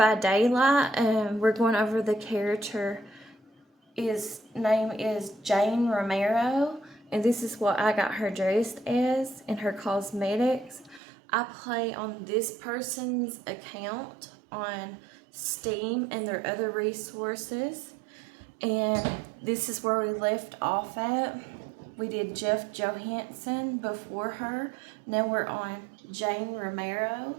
Daylight. We're going over the character. His name is Jane Romero, and this is what I got her dressed as in her cosmetics. I play on this person's account on Steam and their other resources, and this is where we left off at. We did Jeff Johansson before her. Now we're on Jane Romero.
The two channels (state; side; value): drops out; left; at 11.0 s